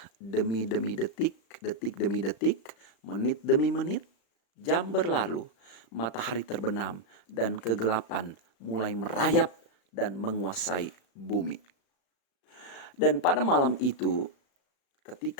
demi detik, detik demi detik, menit demi menit. Jam berlalu, matahari terbenam, dan kegelapan mulai merayap dan menguasai bumi. Dan pada malam itu,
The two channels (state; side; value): late; right; 35 ms